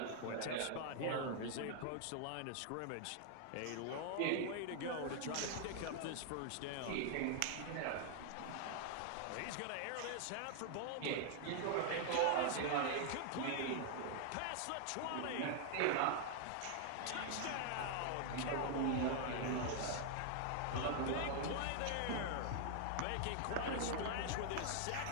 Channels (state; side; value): different; both; correlation 0.00